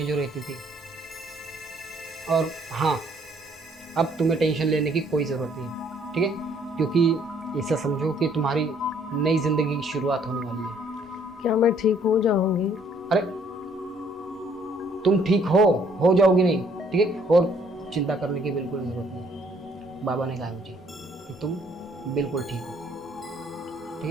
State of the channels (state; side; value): normal; both; correlation 0.64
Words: जो रहती थी। और हाँ, अब तुम्हें टेंशन लेने की कोई ज़रूरत नहीं, ठीक है? क्योंकि ऐसा समझो कि तुम्हारी नई ज़िंदगी की शुरुआत होने वाली है। क्या मैं ठीक हो जाऊंगी? अरे तुम ठीक हो जाओगी नहीं, ठीक है? और चिंता करने की बिल्कुल ज़रूरत नहीं। बाबा ने कहा मुझे कि तुम बिल्कुल ठीक हो, ठीक